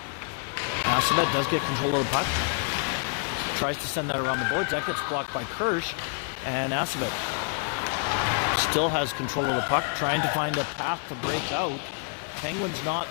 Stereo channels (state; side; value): quieter; right; 36.8 dB